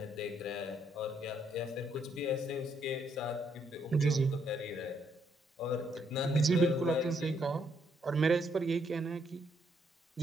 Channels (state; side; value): normal; both; correlation 0.73